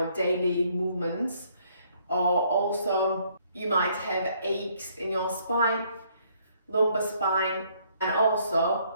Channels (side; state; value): both; inverted; correlation -0.66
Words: daily movements, or also you might have aches in your spine, lumbar spine, and